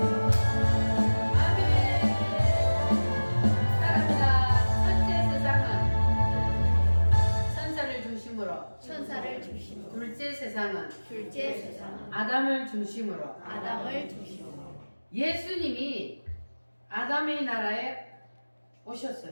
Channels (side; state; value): both; inverted; correlation -1.00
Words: 천사를 중심으로 둘째 세상은 둘째 세상은 아담을 중심으로 아담을 중심으로 예수님이 아담의 나라에